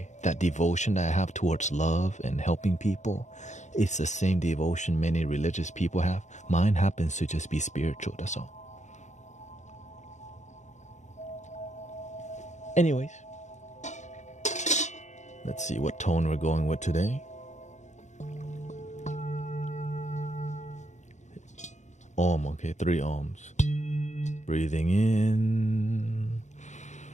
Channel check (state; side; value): late; right; 0.34 ms